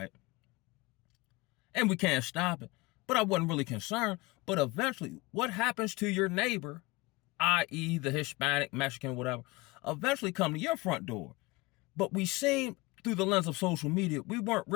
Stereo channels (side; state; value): right; quieter; 23.0 dB